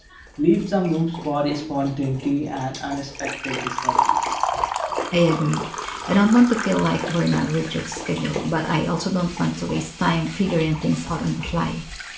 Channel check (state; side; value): identical; both; correlation 1.00